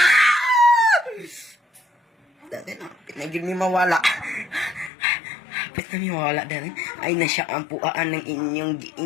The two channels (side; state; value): right; drops out; at 4.9 s